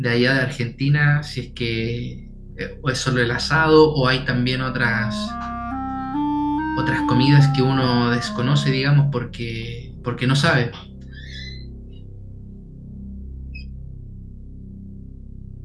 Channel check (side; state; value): both; identical; correlation 1.00